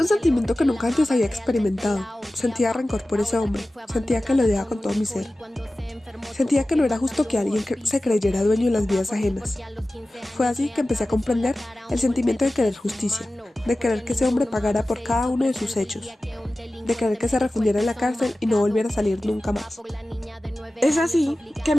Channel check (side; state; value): both; normal; correlation 0.96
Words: sentimiento que nunca antes había experimentado. Sentía rencor por ese hombre. Sentía que lo odiaba con todo mi ser. Sentía que no era justo que alguien se creyera dueño de las vidas ajenas. Fue así que empecé a comprender el sentimiento de querer justicia, de querer que ese hombre pagara por cada uno de sus hechos, de querer que se refundiera en la cárcel y no volviera a salir nunca más. Es así que